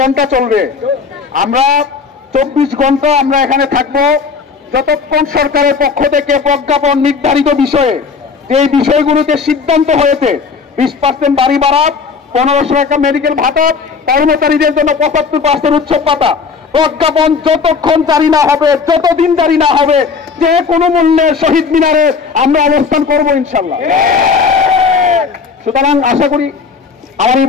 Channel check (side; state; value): right; quieter; 5.2 dB